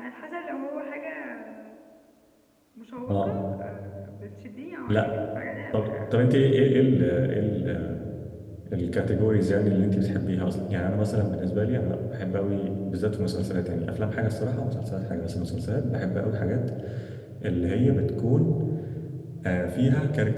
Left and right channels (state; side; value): identical; both; correlation 1.00